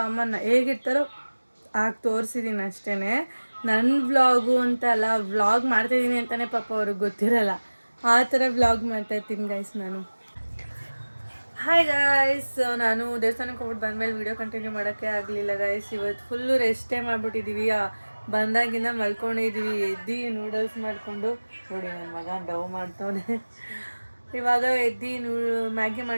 ಅಮ್ಮ ಹೇಗಿರ್ತಾರೋ ಆಗ ತೋರಿಸಿದ್ದೀನಿ ಅಷ್ಟೇ. ನನ್ನ ವ್ಲಾಗು ಅಂತ ಅಲ್ಲ, ವ್ಲಾಗ್ ಮಾಡ್ತಾಯಿದ್ದೀನಿ ಅಂತಲೇ ಪಾಪ ಅವ್ರಿಗೆ ಗೊತ್ತಿರಲ್ಲ. ಆ ಥರ ವ್ಲಾಗ್ ಮಾಡ್ತಾಯಿರ್ತೀನಿ ಗೈಸ್ ನಾನು. ಹಾಯ್ ಗಾಯ್ಸ್, ನಾನು ದೇವಸ್ಥಾನಕ್ಕೆ ಹೋಗ್ಬಿಟ್ಟು ಬಂದಮೇಲೆ ವೀಡಿಯೋ ಕಂಟಿನ್ಯೂ ಮಾಡೋಕ್ಕೆ ಆಗಲಿಲ್ಲ ಗೈಸ್. ಇವತ್ತು ಫುಲ್ಲು ರೆಸ್ಟೇ ಮಾಡಿಬಿಟ್ಟಿದ್ದೀವಿ. ಬಂದಾಗಿಂದ ಮಲ್ಕೊಂಡಿದ್ದೀವಿ. ಎದ್ದು ನೂಡಲ್ಸ್ ಮಾಡಿಕೊಂಡು ನೋಡಿ ನನ್ನ ಮಗ ಡವ್ ಮಾಡ್ತವನೆ. ಇವಾಗ ಎದ್ದು ಮ್ಯಾಗಿ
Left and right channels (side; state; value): both; inverted; correlation -1.00